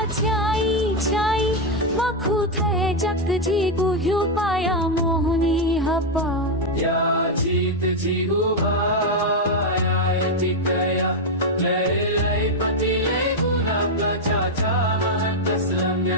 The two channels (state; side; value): normal; both; correlation 0.02